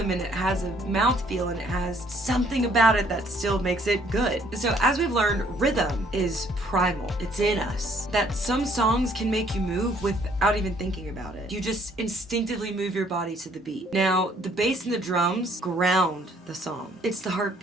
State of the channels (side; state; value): both; normal; correlation 0.62